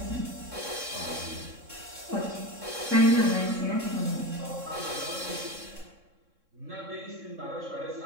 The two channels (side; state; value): left; late; 3.6 ms